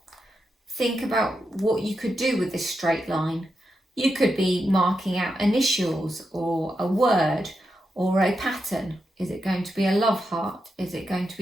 think about what you could do with this straight line. You could be marking out initials or a word or a pattern. Is it going to be a love heart? Is it going to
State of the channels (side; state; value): both; normal; correlation 0.86